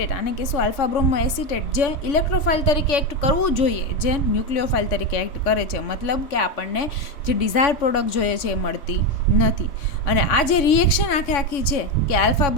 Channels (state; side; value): late; right; 3.6 ms